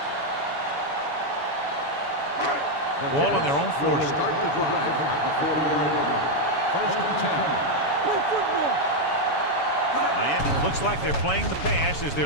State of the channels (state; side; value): late; right; 7.1 ms